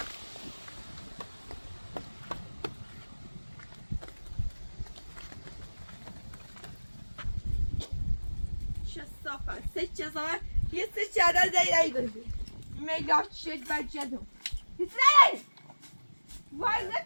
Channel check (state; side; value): inverted; both; correlation -1.00